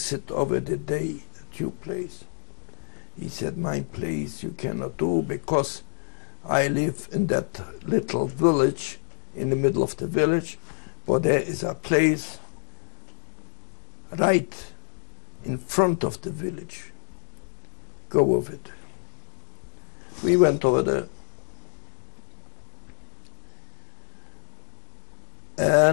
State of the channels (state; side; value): silent; right; digital silence